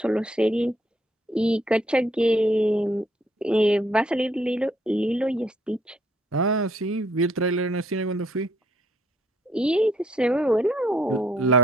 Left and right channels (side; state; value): both; normal; correlation 0.67